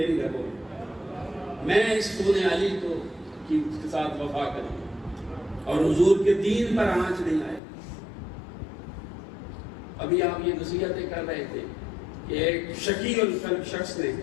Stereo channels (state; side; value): drops out; right; at 7.6 s